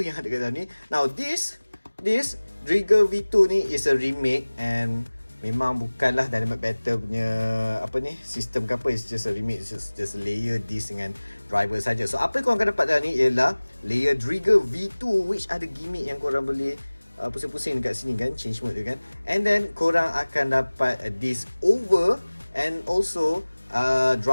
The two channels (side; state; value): both; inverted; correlation -1.00